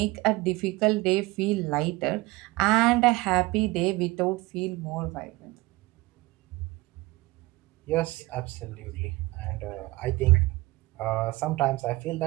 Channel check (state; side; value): quieter; left; 21.1 dB